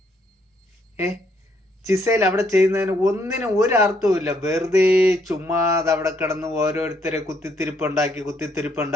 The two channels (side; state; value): both; normal; correlation 0.71